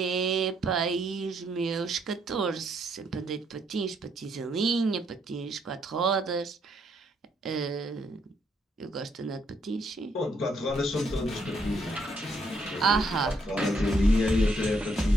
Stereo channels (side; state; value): both; normal; correlation 0.73